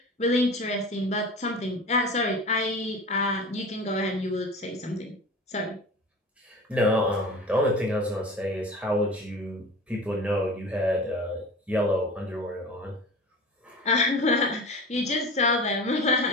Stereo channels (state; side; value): normal; both; correlation 0.35